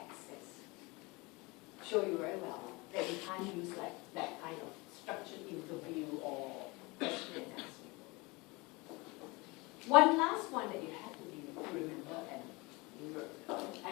Show you very well that we can't use like that kind of structured interview or question and answer. One last one that you have to remember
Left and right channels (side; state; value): right; quieter; 25.2 dB